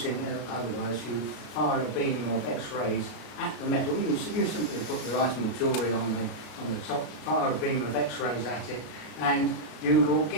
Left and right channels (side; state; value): right; late; 34 ms